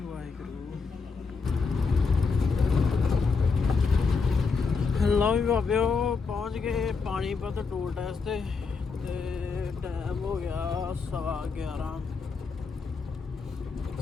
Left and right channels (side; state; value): right; quieter; 4.8 dB